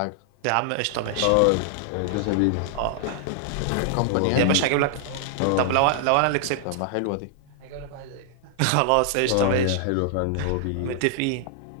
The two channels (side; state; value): both; different; correlation 0.00